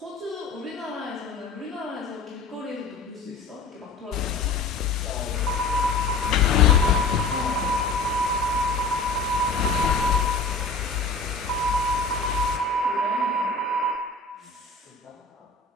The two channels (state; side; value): quieter; right; 3.8 dB